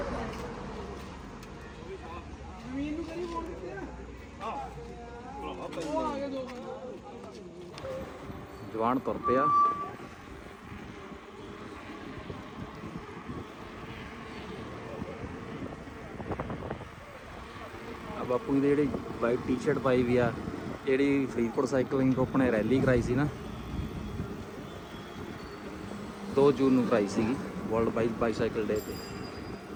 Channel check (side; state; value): both; identical; correlation 1.00